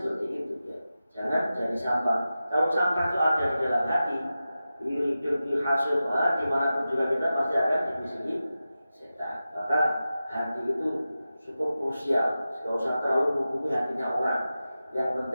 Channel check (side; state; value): both; inverted; correlation -0.93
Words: itu ya. Jangan jadi sampah. Kalau sampah itu ada di dalam hati, hidup di hasil, dimanapun juga kita pasti akan dibisiki setan. Maka hati itu cukup krusial. Tidak usah terlalu menghubungi hatinya orang. Yang